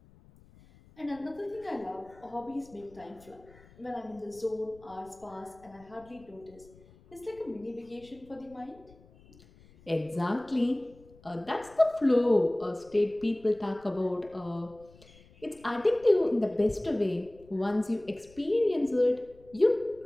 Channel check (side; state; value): left; noise; rumble, 25 dB below the sound